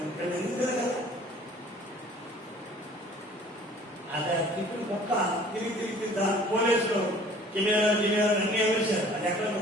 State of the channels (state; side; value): normal; both; correlation 0.51